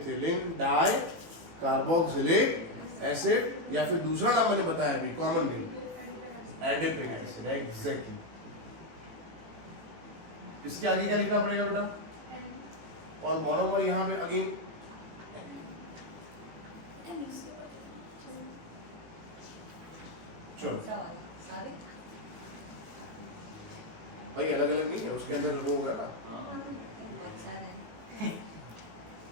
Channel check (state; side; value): late; left; 18 ms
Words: di carboxylic acid, या फिर दूसरा नाम मैंने बताया अभी, common name adipic acid. Exactly. इसके आगे क्या लिखना पड़ेगा बेटा? और मोनोमर यहां पे अगेन चलो सारे भाई अलग अलग नहीं है, उसके अंदर वो है ना। बहुत सारे हैं।